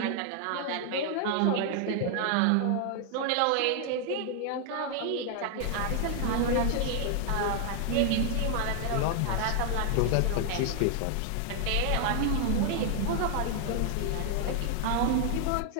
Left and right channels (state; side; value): different; both; correlation 0.00